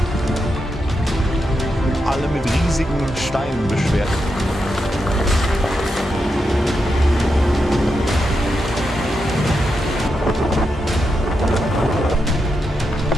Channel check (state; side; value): normal; both; correlation 0.86